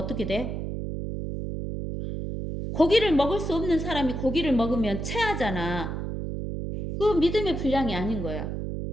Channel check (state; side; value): noise; right; hum, 4 dB below the sound